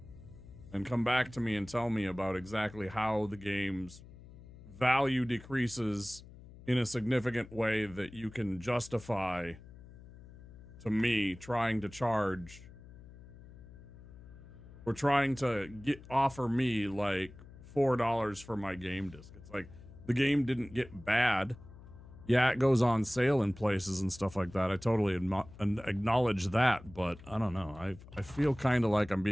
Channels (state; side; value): noise; left; hum, 18 dB below the sound